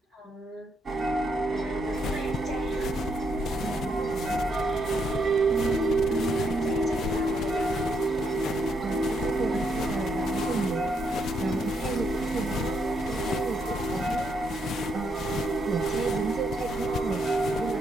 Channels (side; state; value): both; normal; correlation 0.76